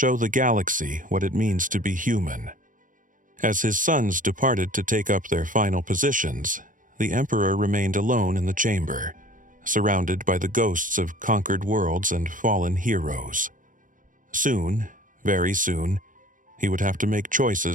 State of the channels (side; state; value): left; late; 0.38 ms